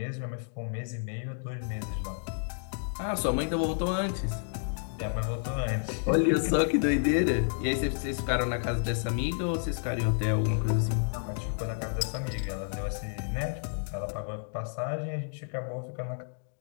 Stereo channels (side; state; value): right; silent; digital silence